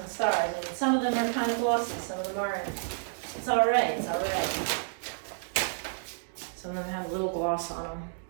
stars. Like, some of them are kind of glossy, some of them aren't. It's all right. Some of them have a little gloss on them.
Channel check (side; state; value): left; silent; digital silence